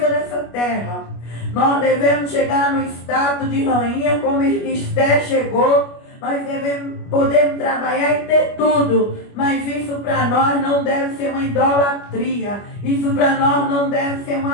dessa terra. Nós devemos chegar no estado de rainha como Esther chegou. Nós podemos trabalhar e ter tudo, mas isso para nós não deve ser uma idolatria. Isso para nós não deve ser um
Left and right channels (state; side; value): late; right; 25 ms